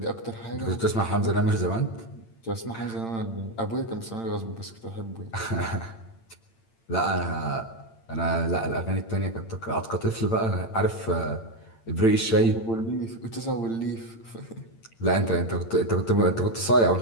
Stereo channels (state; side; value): late; right; 8.8 ms